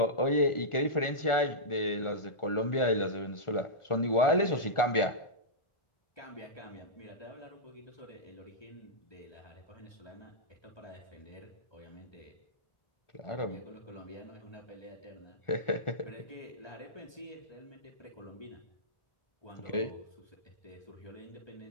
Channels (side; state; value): right; late; 1.4 ms